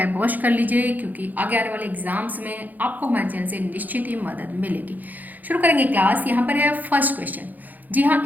अवश्य कर लीजिए, क्योंकि आगे आने वाले एग्जाम्स में आपको हमारे चैनल से निश्चित ही मदद मिलेगी। शुरू करेंगे क्लास। यहाँ पर है फर्स्ट क्वेश्चन। जी हाँ,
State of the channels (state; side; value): late; left; 0.083 ms